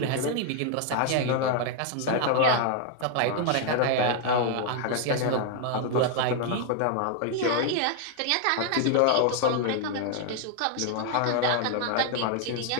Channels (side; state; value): both; different; correlation 0.00